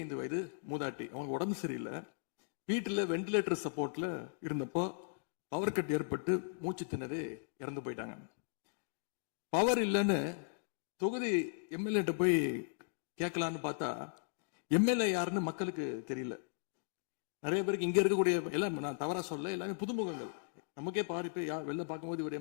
வயது மூதாட்டி, அவங்க உடம்பு சரியில்லை, வீட்டுல வெண்டிலேட்டர் சப்போர்ட்ல இருந்தப்போ பவர் கட் ஏற்பட்டு மூச்சு திணறி இறந்து போயிட்டாங்க. பவர் இல்லைன்னு தொகுதி எம்எல்ஏ போய் கேட்கலான்னு பார்த்தா எம்எல்ஏ யாருன்னு மக்களுக்கு தெரியல. நிறைய பேருக்கு இங்க இருக்கக்கூடிய எல்லாம், நான் தவறா சொல்ல, எல்லாமே புதுமுகங்கள். நமக்கே பாரு வெளில பார்க்கும்போது ஒரு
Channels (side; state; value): right; silent; digital silence